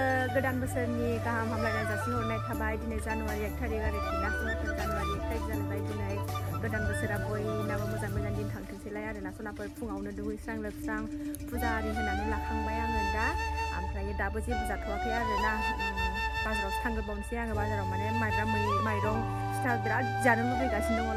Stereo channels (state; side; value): identical; both; correlation 1.00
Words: गोदान बोसोरनि गाहाम हामलायनाय जासिहरनाय थाबाय दिनै जानुवारि 1 थारिख आरोखि ना सनाफोर जानुवारि 1 थारिख जालायबाय दिनै गोदान बोसोरा बयनाबो मोजां मोजां दिन थांथोंसैलाय आरोना सनाफोर फुङावनो दुगैस्रां लोबस्रां फुजा आरि होनानै लाखांबाय आङो दा ओमफ्राय दाबो जेबो जाथ'वाखै आरोना बाजारावसो थांग्रोबावनोसै आङो बाजाराव माने माइरं फिथा बिराद जानो लुबैगासिनो दङ